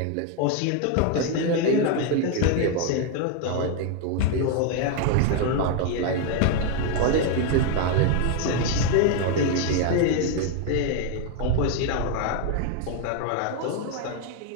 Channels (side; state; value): both; different; correlation 0.01